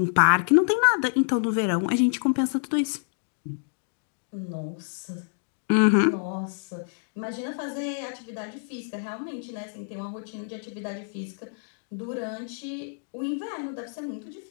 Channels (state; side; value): silent; right; digital silence